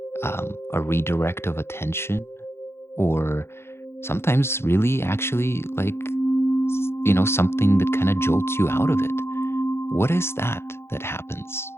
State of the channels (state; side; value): late; right; 0.12 ms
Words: a redirect of attention, or sometimes really actually something that kind of jolts you out of it. What is that happens?